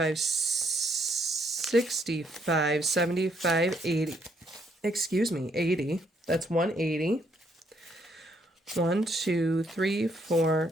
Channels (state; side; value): normal; both; correlation 0.71